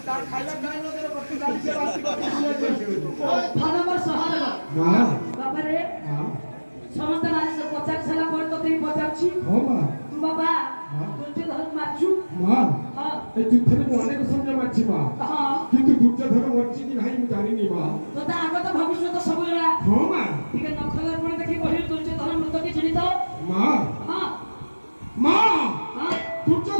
তার খাইলা খাইলা করে বসি গালিছে বাসি ଧନମ ସହଦେବ ମା ବାପାରେ ମା ସମସ୍ତେ ପଚାରି ସାରିଲା ପରେ ତୋତେ ବି ପଚାରୁଛି ହଁ ମା ତୁ ବାପା ଦୁର୍ଯ୍ୟୋଧନକୁ ମାରିଛୁ ମା ହଁ ଏ ଯୁଦ୍ଧରେ ମୁଁ ଅନେକ ସୈନ୍ୟ ମାରିଛି ମା ହଁ କିନ୍ତୁ ଦୁର୍ଯ୍ୟୋଧନ ମରିଛି କି ନାହିଁ ମୁଁ ଜାଣିନି ମା ତୋତେ ଆଗତ ଭବିଷ୍ୟତ ସବୁ ଜଣା ହଁ ମା ଟିକେ ନଖର ପୁଣି ଦେଖି କହିଲୁ ଦୁର୍ଯ୍ୟୋଧନ ମୃତ କି ଚିହ୍ନିତ ମା ହଁ ମା ହଁ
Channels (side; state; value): both; inverted; correlation -1.00